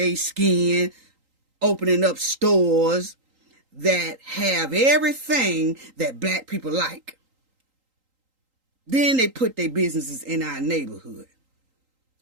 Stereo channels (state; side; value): late; left; 3.8 ms